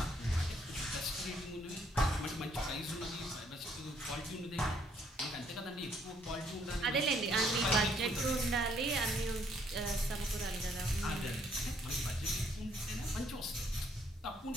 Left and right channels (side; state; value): both; normal; correlation 0.68